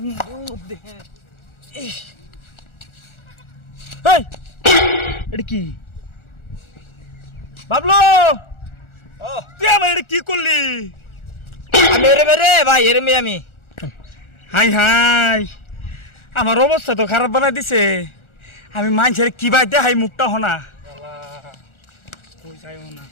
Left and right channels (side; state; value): right; late; 1.4 ms